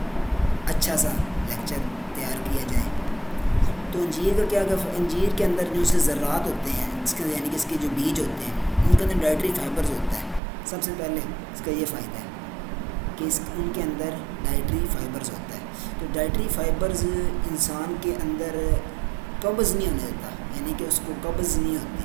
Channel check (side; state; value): left; drops out; at 10.4 s